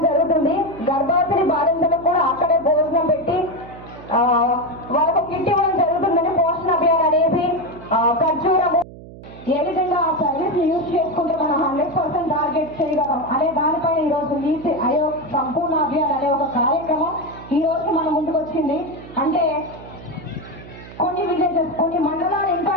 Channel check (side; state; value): right; noise; hum, 17 dB below the sound